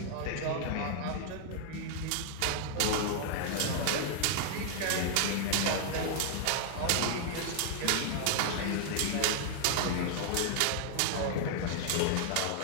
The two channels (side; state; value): both; different; correlation 0.00